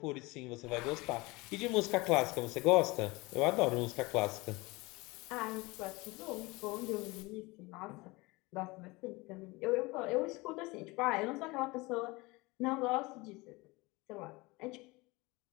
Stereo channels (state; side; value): quieter; right; 23.4 dB